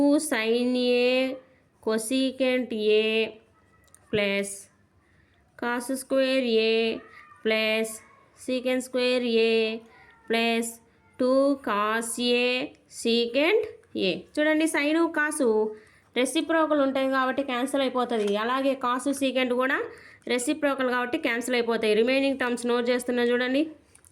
sin A cosecant A plus cos square A plus secant square A plus 2 cos A secant ఏ. చూడండి, sine కాసు reciprocal ఉంటాయి కాబట్టి cancel అయిపోతుంది. అలాగే కాసు సీకెంట్ కూడా రెసిప్రోకల్ కాబట్టి క్యాన్సిల్ అయిపోతాయి. రిమైనింగ్ టర్మ్స్ నోట్ చేస్తున్నా చూడండి.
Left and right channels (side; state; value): both; identical; correlation 1.00